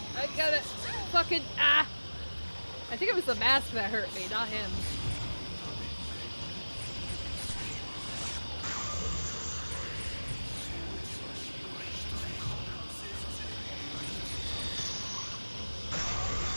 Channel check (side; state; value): both; inverted; correlation -1.00